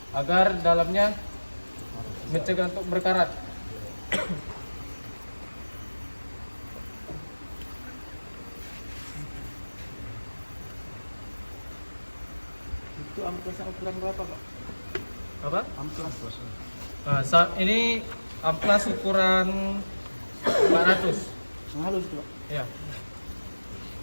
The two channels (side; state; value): both; inverted; correlation -1.00